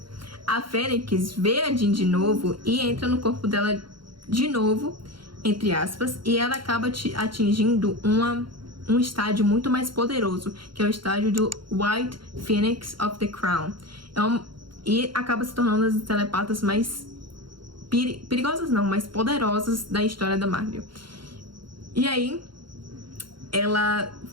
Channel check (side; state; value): left; late; 0.73 ms